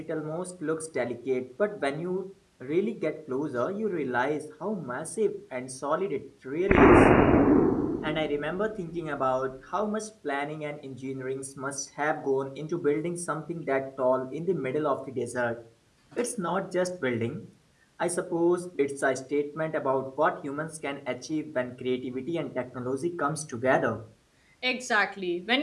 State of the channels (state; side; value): identical; both; correlation 1.00